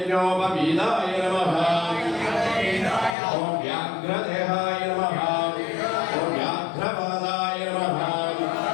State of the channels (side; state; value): right; drops out; at 3.2 s